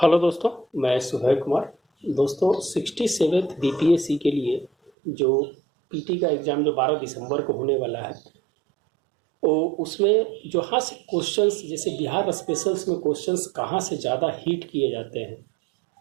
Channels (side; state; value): left; drops out; at 4.9 s